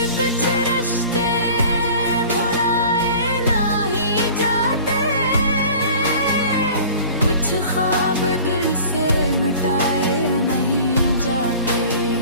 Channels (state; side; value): inverted; both; correlation -0.44